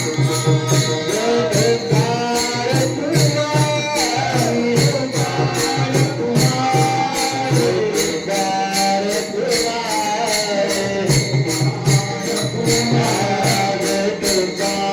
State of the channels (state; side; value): identical; both; correlation 1.00